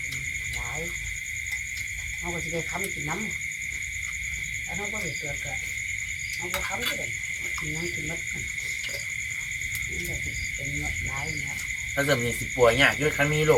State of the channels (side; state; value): both; identical; correlation 1.00